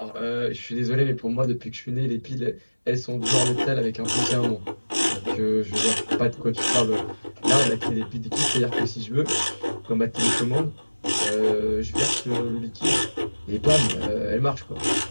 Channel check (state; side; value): inverted; both; correlation -1.00